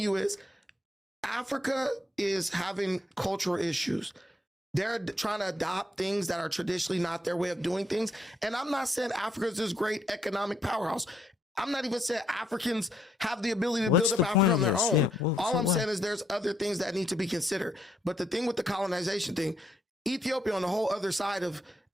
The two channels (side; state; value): both; normal; correlation 0.74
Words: you is Africa is having cultural issues. They're trying to adopt things that are traditionally not their way of doing things. And I'm not saying Africa is this great economic powerhouse. I'm not even saying Africans have the ability to build up Africa on their own. Yeah, all I'm saying is there's other things that need to be considered. But the thing with the colonization thing, Ethiopia on the whole other side of